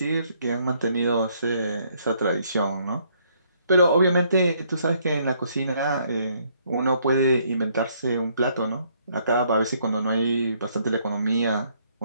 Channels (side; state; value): both; inverted; correlation -0.68